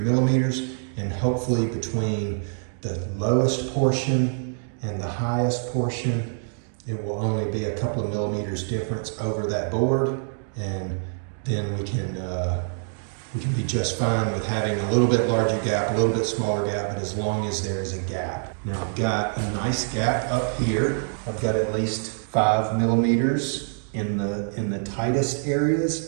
And hopefully between the lowest portion and the highest portion, it will only be a couple of millimeters difference over that board. And then we can be just fine with having a little bit larger gap, a little bit smaller gap, but as long as there is a gap. Now I've got a nice gap up here. I've got at least 5 millimeters in the tightest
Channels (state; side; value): silent; left; digital silence